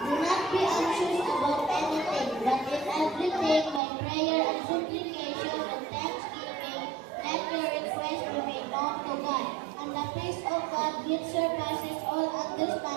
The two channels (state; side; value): drops out; left; at 3.8 s